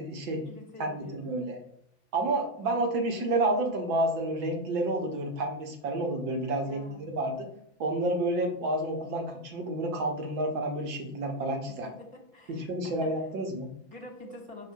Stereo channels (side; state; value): left; late; 5.9 ms